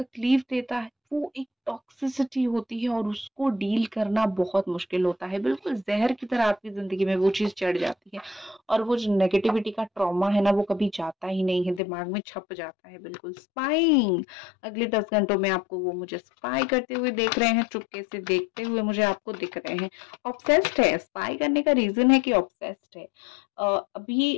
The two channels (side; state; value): right; drops out; at 11.8 s